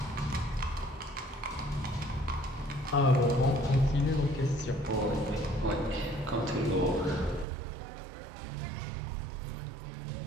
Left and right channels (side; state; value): left; drops out; at 7.5 s